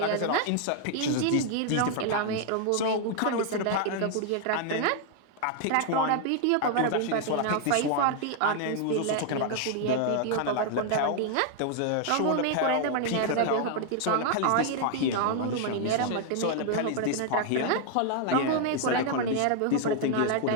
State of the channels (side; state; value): both; different; correlation 0.00